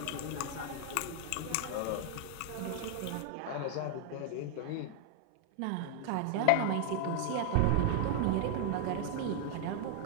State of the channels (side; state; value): both; different; correlation 0.00